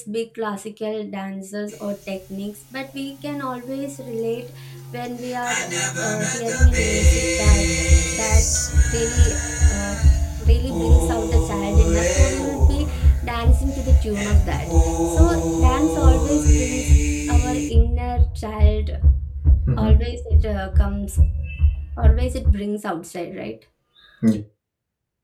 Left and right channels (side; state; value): both; identical; correlation 1.00